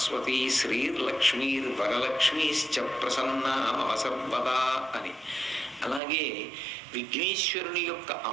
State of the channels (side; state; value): left; drops out; at 6.0 s